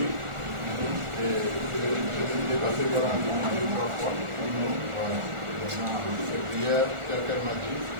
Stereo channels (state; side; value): late; left; 1.4 ms